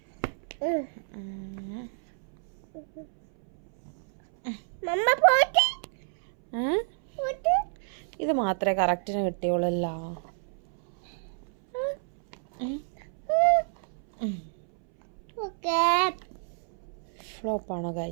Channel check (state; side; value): silent; left; 59 dB below the other